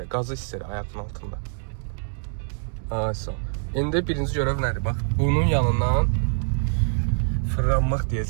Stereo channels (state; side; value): silent; left; 62 dB below the other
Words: qazı hiss elə ayağının altında. Ayso. İndi birinci görəv nədir? Bax, bunun yanından fırlanmaq